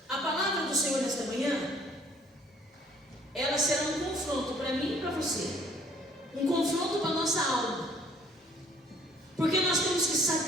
a palavra do Senhor nesta manhã, ela será um confronto para mim e para você, um confronto para a nossa alma, porque nós temos que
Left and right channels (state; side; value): normal; both; correlation 0.58